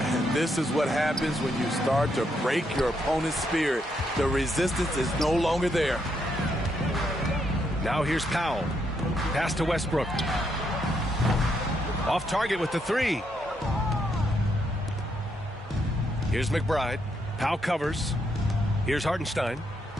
And this is what happens when you start to break your opponent's spirit. The resistance is no longer there. Now here's Powell. Pass to Westbrook. Off target with the three. Here's McBride. Powell covers. Here's Hartenstein.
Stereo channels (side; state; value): both; normal; correlation 0.77